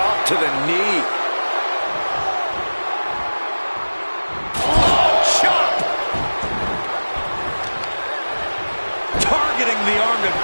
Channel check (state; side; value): inverted; both; correlation -1.00